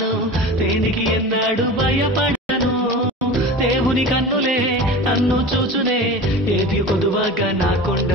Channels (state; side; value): normal; both; correlation 0.33